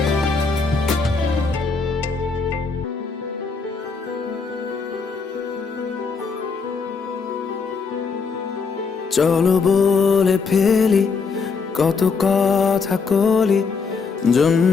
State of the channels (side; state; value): right; quieter; 4.9 dB